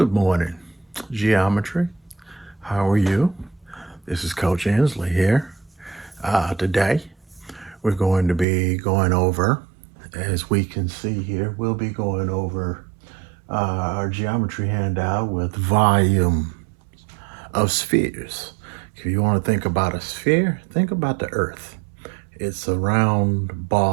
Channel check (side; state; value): left; drops out; at 8.5 s